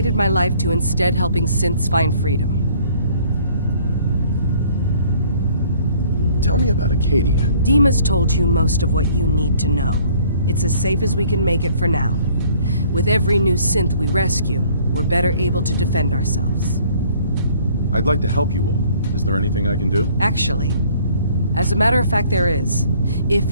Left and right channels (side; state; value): both; inverted; correlation -0.58